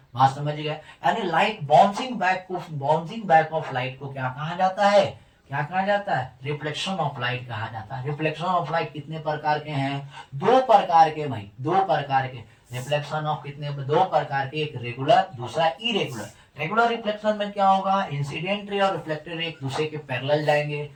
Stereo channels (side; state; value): both; identical; correlation 1.00